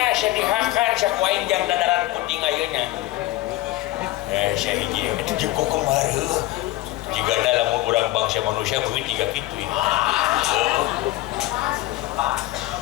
sedihakan sakuain jam dadaran putih ngayunya saya hiji itu juga kemarin jika dalam kurang bangsa manusia mungkin tiga gitu ini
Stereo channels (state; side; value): quieter; right; 17.7 dB